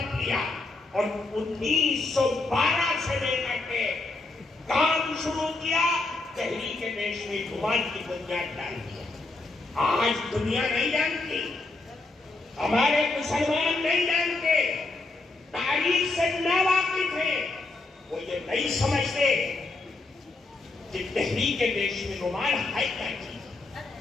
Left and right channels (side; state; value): right; quieter; 3.3 dB